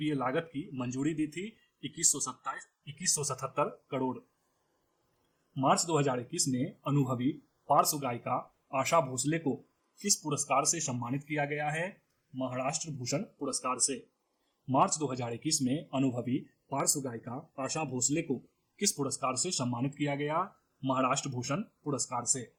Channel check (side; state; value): both; identical; correlation 1.00